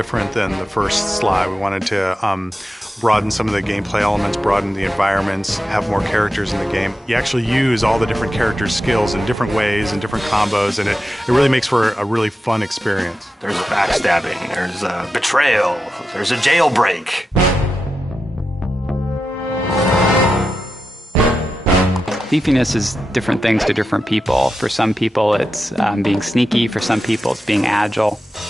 than the first Sly. We wanted to broaden some of the gameplay elements, broaden the environments, have more characters in the game. You actually use all the different characters' skills in different ways and different combos, and it really makes for a really fun experience. There's a backstabbing, there's a betrayal, there's a jailbreak. Thiefiness is different things to different people. For some people, it's being sneaky. For some people, it's being agile.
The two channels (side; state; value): both; normal; correlation 0.90